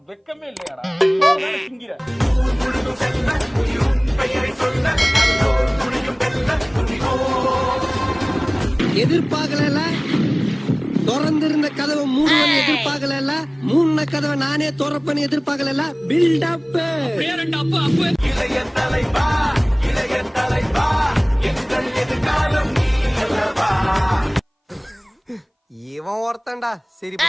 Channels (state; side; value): identical; both; correlation 1.00